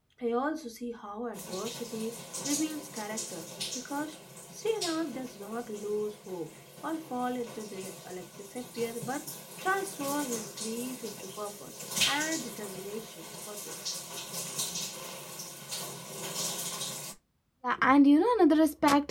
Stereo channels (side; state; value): both; identical; correlation 1.00